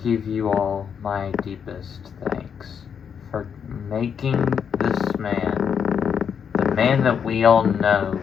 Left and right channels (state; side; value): quieter; right; 7.3 dB